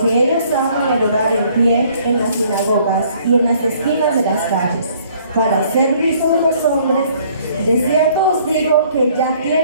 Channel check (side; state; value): both; inverted; correlation -0.60